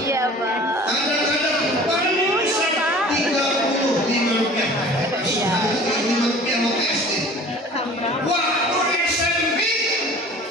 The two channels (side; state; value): both; normal; correlation 0.45